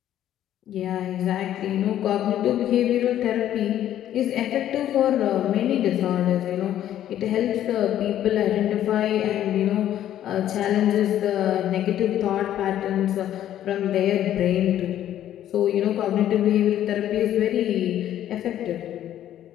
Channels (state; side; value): quieter; right; 11.6 dB